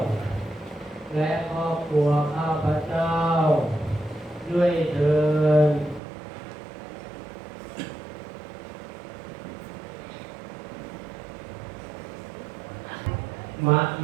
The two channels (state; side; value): drops out; left; at 6.0 s